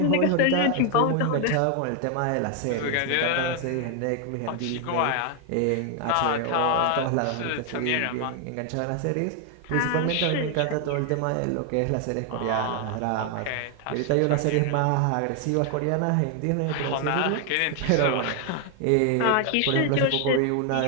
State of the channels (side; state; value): both; different; correlation 0.00